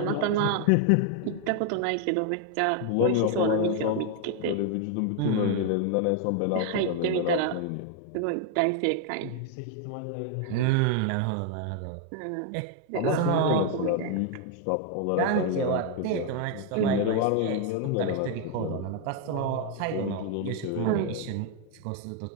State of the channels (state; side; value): different; both; correlation 0.00